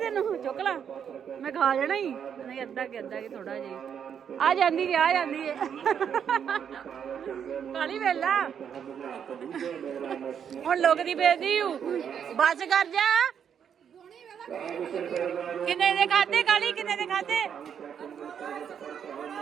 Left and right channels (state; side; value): quieter; left; 8.0 dB